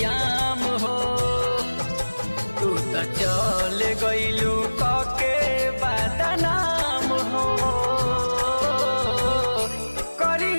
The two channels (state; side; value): inverted; both; correlation -1.00